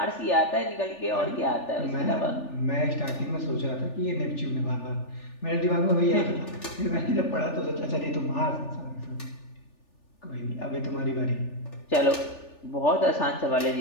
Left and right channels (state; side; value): late; right; 3.4 ms